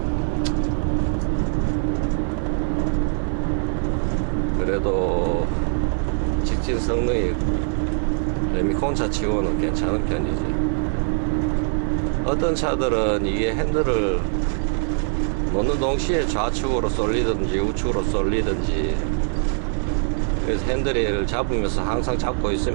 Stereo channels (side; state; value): left; silent; 59 dB below the other